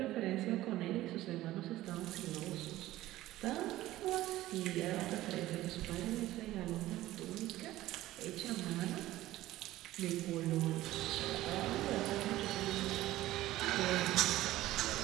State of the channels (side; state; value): left; quieter; 15.8 dB